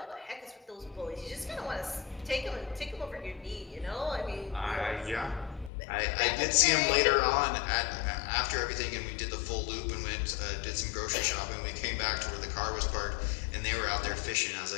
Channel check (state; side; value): drops out; right; at 5.7 s